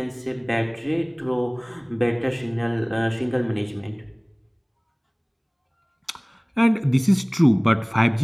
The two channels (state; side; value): identical; both; correlation 1.00